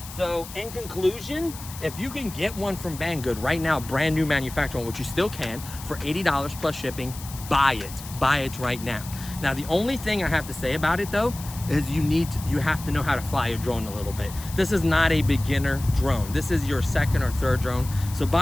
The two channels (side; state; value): left; noise; hiss, 14 dB below the sound